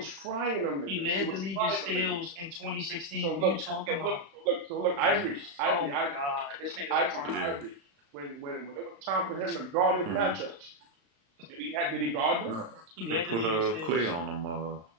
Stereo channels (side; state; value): left; late; 35 ms